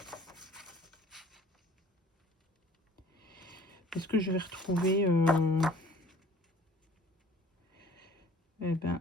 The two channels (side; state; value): both; normal; correlation 0.50